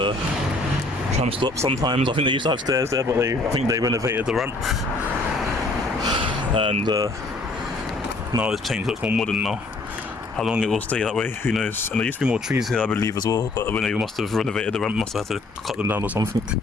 tram stop sometimes. I think they used to have stairs there, but I think they renovated the ramp. And now it's changed, looks more modern now. How long it will stay that way, who knows. And there used to be more trees here, I believe, as well, but when they must have renovated the ramp, must have had to cut them down or something.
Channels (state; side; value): quieter; right; 3.0 dB